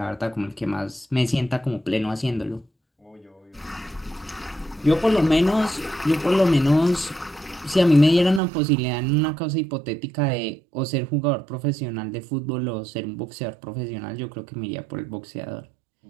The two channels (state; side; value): drops out; left; at 8.4 s